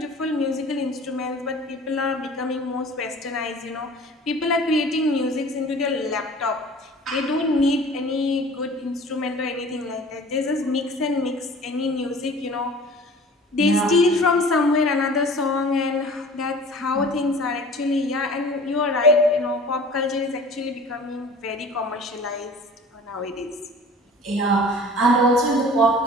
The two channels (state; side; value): normal; both; correlation 0.44